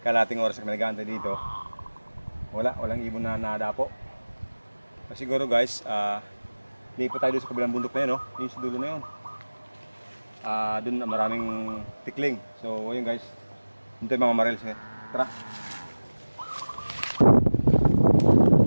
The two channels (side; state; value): both; inverted; correlation -1.00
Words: kalating oras kami nag-aantay dito. Walang ibon na nadapo. Siguro guys, lipat tayo doon sa kabilang bundok na yun, yung sa dulo na yun. Doon maraming tikling. So ayun guys, doon tayo mamamaril. Tara.